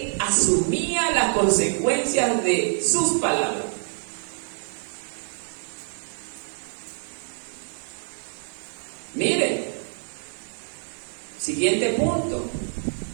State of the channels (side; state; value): left; silent; 57 dB below the other